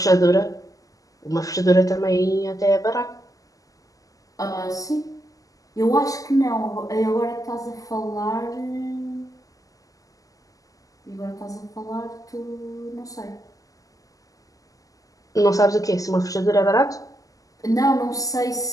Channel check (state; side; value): late; right; 0.17 ms